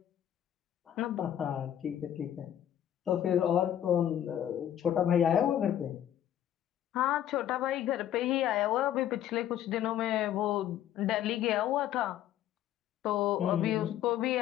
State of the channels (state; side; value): quieter; right; 11.1 dB